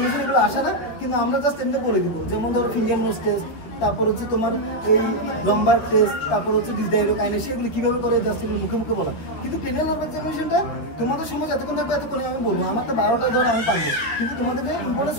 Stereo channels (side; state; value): right; late; 12 ms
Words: এগুলো আসে না, কিন্তু আমরা জাস্ট এমনি বলে দিব। যেমন ধরো ফিঙ্গার নোজ টেস্ট, তারপর হচ্ছে তোমার এই লম্বার টেস্ট, তারপর হচ্ছে ডিসডাইরোকাইনেসিস, এগুলো কিভাবে করে জাস্ট এগুলো মুখে মুখে বলা। কিন্তু ক্রেনিয়াল নার্ভ এক্সামিনেশনটা তোমাদের সময় যতক্ষণ থাকবে এতক্ষণ আমি বলবো, আমার তো 12টায় ধরে আমি পারবো, কিন্তু তোমাদেরকে ইম্পর্টেন্স